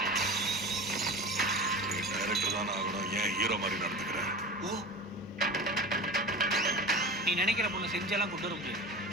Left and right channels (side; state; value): both; normal; correlation 0.31